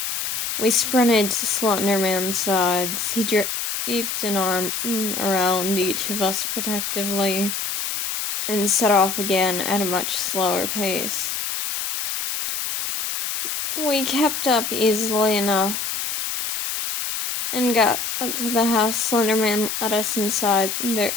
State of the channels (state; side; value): noise; left; hiss, 3 dB below the sound